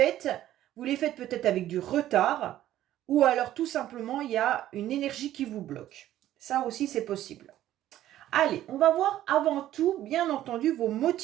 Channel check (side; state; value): left; quieter; 13.1 dB